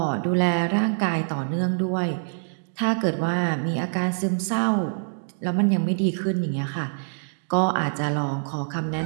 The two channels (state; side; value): silent; left; digital silence